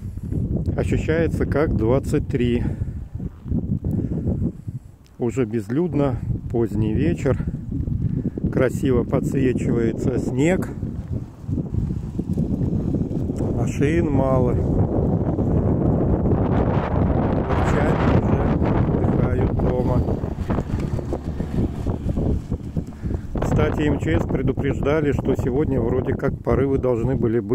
Ощущается как 23. Уже безлюдно, поздний вечер. Красиво подсвечивается снег. Машин мало. Датчане уже отдыхают дома. Кстати, МЧС предупреждали, что сегодня вроде как порывы должны были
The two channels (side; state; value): both; identical; correlation 1.00